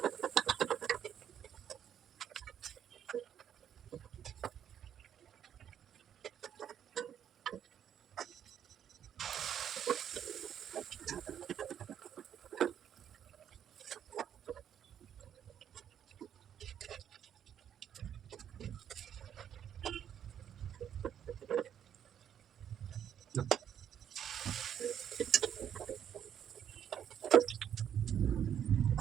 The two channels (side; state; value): left; quieter; 9.3 dB